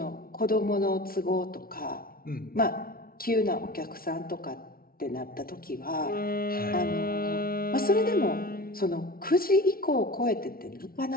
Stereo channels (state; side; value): late; right; 0.43 ms